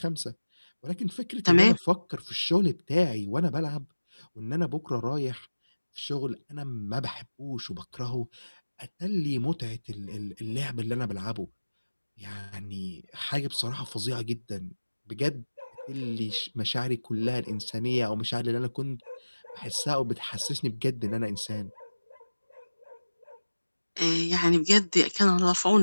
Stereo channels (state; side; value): inverted; both; correlation -1.00